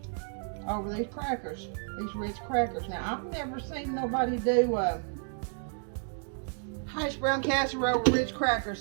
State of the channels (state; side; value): silent; left; 55 dB below the other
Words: over these crackers, these rich crackers. Now, I've never seen nobody do Hashbrown casserole with rich crackers,